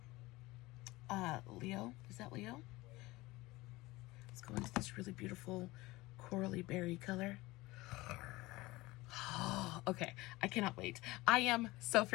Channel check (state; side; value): quieter; right; 20.4 dB